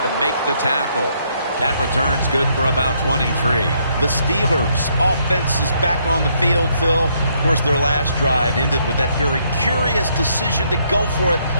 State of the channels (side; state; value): both; inverted; correlation -0.72